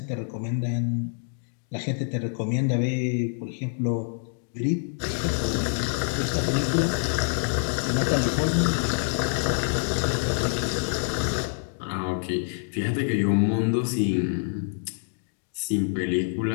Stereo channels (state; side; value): silent; right; digital silence